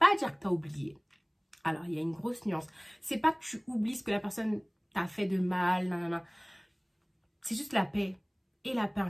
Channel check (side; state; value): both; identical; correlation 1.00